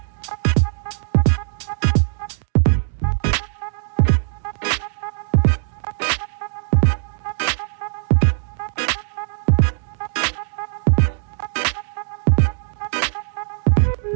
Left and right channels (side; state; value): left; silent; digital silence